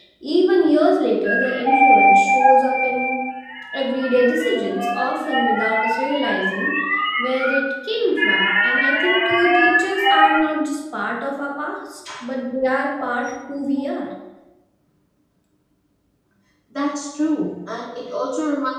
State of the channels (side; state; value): both; identical; correlation 1.00